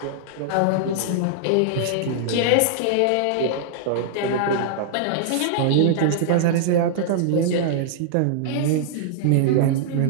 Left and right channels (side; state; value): both; different; correlation -0.01